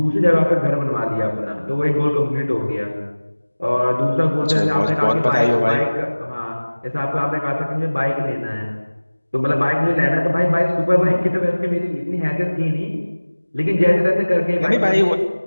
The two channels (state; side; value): inverted; both; correlation -1.00